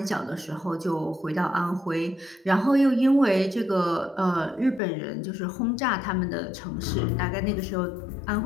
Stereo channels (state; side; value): drops out; right; at 4.8 s